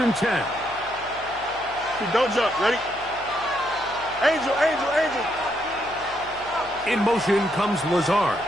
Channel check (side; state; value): left; noise; hum, 21 dB below the sound